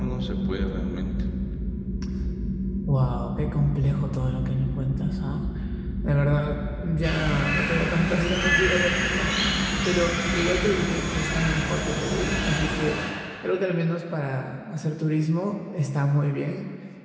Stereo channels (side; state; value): both; identical; correlation 1.00